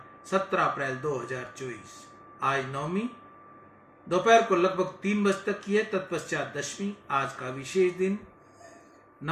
17 अप्रैल 2024। आज नवमी दोपहर को लगभग 3 बजे तक की है, तत्पश्चात दशमी। आज का विशेष दिन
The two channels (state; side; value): identical; both; correlation 1.00